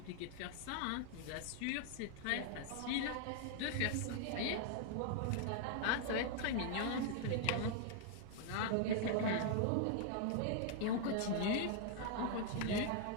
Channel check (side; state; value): both; different; correlation 0.00